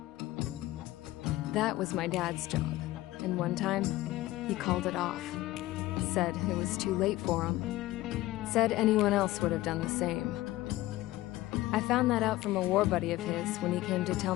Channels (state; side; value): quieter; right; 16.9 dB